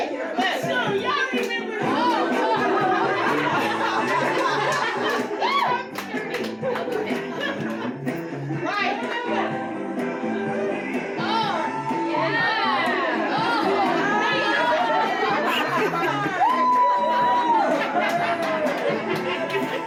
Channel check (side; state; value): both; identical; correlation 1.00